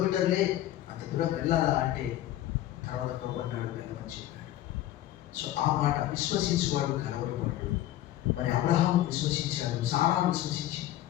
అంత దూరం వెళ్ళాలా అంటే తర్వాత అన్నాడు వెళ్ళమని చెప్పాడు. సో ఆ మాట విశ్వసించేవాడు కలవరపడు. మరి అబ్రహాము విశ్వసించాడు, సారా విశ్వసించింది.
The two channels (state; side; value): quieter; right; 13.6 dB